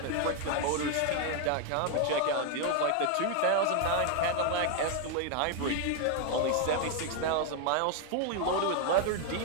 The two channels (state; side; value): different; both; correlation 0.01